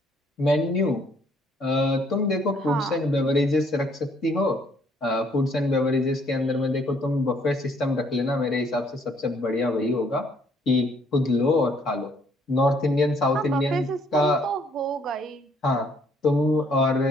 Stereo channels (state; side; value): normal; both; correlation 0.65